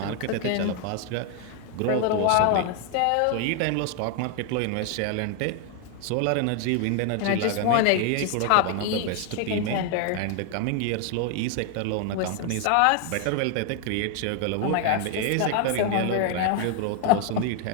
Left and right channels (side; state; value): both; different; correlation 0.00